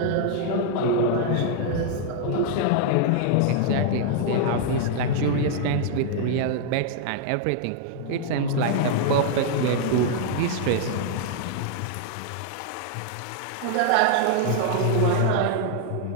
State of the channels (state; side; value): different; both; correlation 0.00